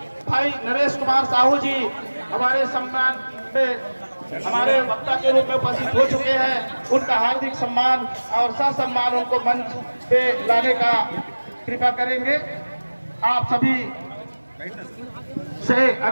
भाई नरेश कुमार साहू जी हमारे सम्मान में हमारे वक्ता के रूप में उपस्थित हो चुके हैं। उनका हार्दिक सम्मान और ससम्मान उनको मंच पे लाने का कृपा करेंगे। आप सभी से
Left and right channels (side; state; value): both; inverted; correlation -1.00